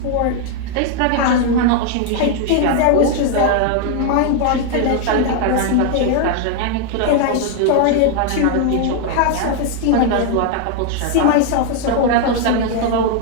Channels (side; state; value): both; different; correlation 0.00